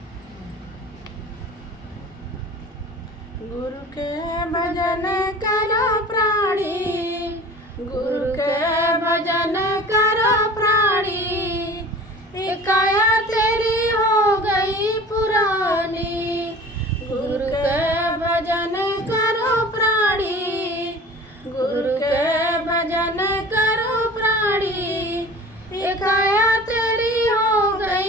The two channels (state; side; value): normal; both; correlation 0.41